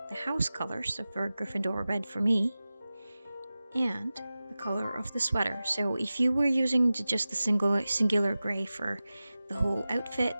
the house color, so for Gryffindor red for me, and the color of the sweater. So if you were using just the singular gray for the whole outfit,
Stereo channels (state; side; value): inverted; both; correlation -0.96